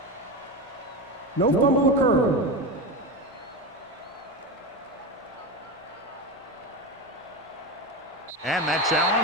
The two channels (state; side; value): normal; both; correlation 0.20